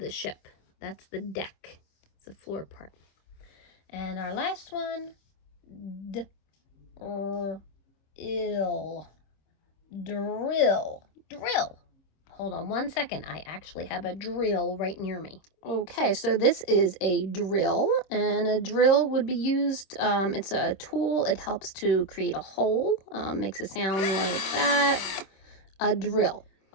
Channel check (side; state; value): right; late; 26 ms